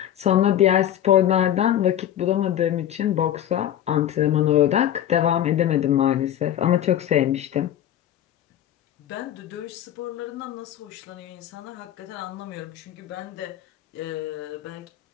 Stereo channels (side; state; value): right; quieter; 11.3 dB